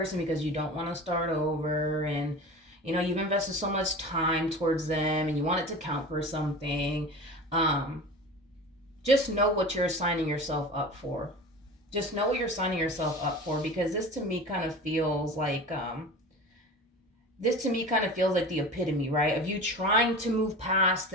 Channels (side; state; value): both; normal; correlation 0.34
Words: because you don't want to start over, and you've invested so much time towards them and you want it to count for something, just know what you're signing yourself up for. Just know what you're signing yourself up for, because this to me kind of feels like the epitome, right, of you trying to move past